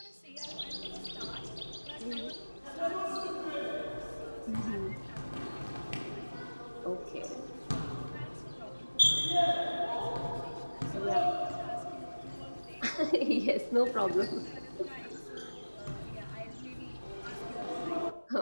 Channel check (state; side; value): inverted; both; correlation -1.00